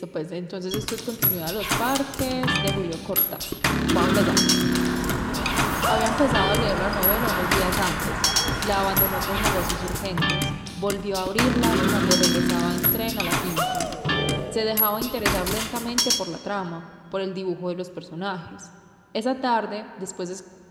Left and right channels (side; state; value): both; identical; correlation 1.00